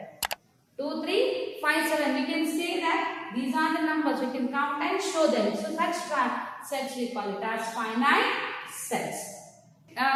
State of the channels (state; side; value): identical; both; correlation 1.00